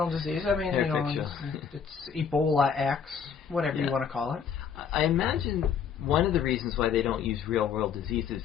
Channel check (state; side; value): quieter; right; 7.0 dB